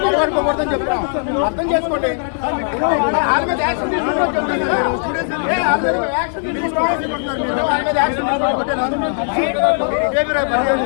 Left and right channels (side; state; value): right; silent; 67 dB below the other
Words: చెప్తాం, అర్థం చేసుకోండి.